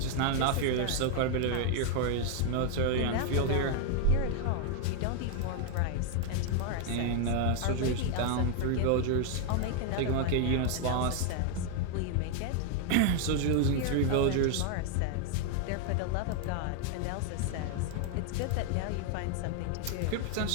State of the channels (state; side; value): different; both; correlation 0.00